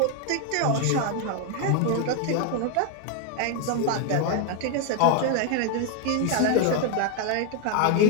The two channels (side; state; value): both; different; correlation 0.01